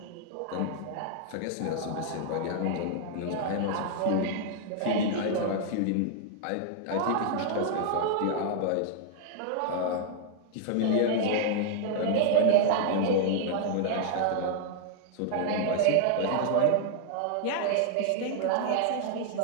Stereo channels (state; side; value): different; both; correlation 0.00